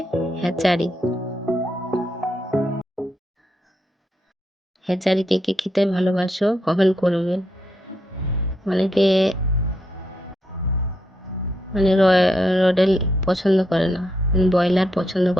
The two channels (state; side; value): normal; both; correlation 0.79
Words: হ্যাচারি। হ্যাচারি কে কে খেতে ভালোবাসো কমেন্ট করবে। অনেকে মানে রডেল পছন্দ করে না, ব্রয়লার পছন্দ